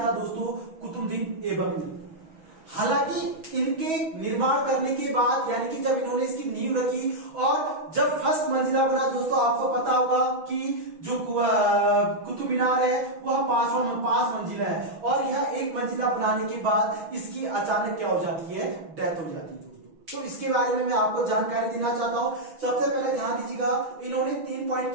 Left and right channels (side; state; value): left; late; 6.2 ms